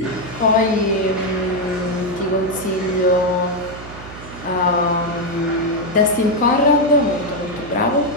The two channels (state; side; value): noise; right; hum, 15 dB below the sound